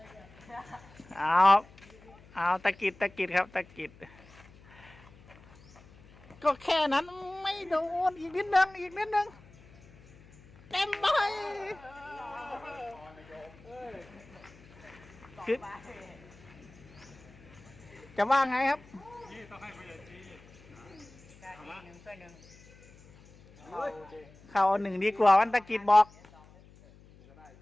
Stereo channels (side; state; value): left; noise; hum, 24 dB below the sound